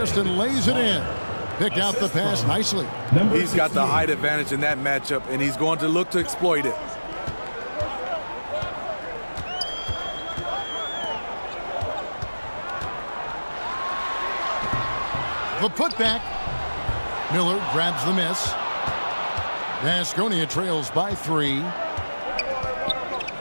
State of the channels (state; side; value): inverted; both; correlation -1.00